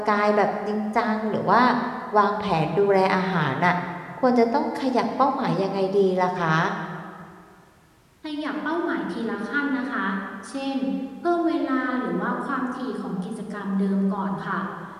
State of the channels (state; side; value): identical; both; correlation 1.00